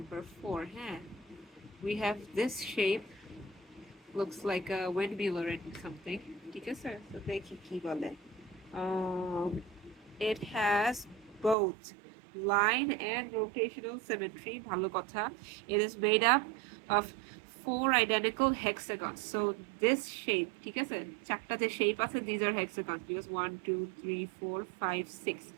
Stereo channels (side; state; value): left; drops out; at 11.6 s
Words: 4. Huh? We have this shape, looks like a windmill or something. ঠিক আছে? So দেখি কি বলে. It has both line and rotational symmetry. ভালো কথা. It is made up of 4 identical hexagons. So this shape, ঠিক আছে? চারটা যে shape আছে, these are hexagons because 1, 2, 3, 4, 5, 6.